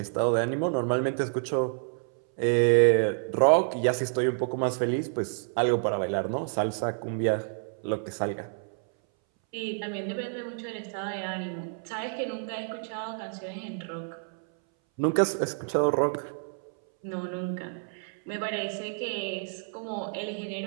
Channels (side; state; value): left; silent; 59 dB below the other